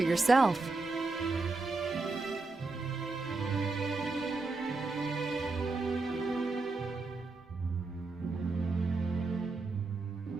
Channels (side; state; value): left; quieter; 3.6 dB